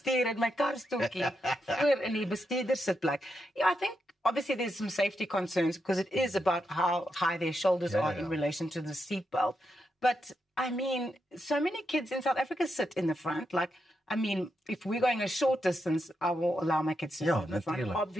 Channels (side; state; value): both; normal; correlation 0.84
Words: in my karstoeltjie voor in die bestuurdersitplek. Yeah, I think obviously there's some safety concerns because it is about how high their shoulders are in relation to the seatbelt. But I mean, so many kids in South Africa sit in the front. Like, I mean, if we're going a short distance, I will allow my kids to sit in the front,